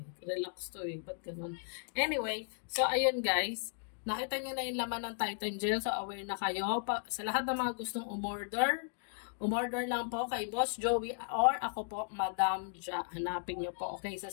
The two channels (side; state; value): right; silent; digital silence